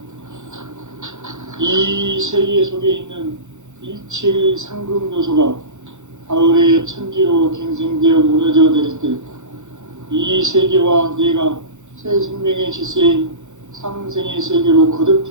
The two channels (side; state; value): left; late; 0.84 ms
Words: 이 세계 속에 있는 일체의 상금 요소가 가을의 천지로 갱생되어 무너져 내릴 때 이 세계와 내가 새 생명의 질서인 상생의 세계로 거듭